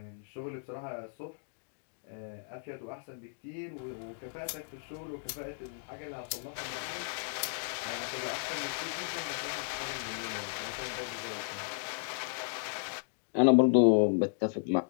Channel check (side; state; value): right; silent; digital silence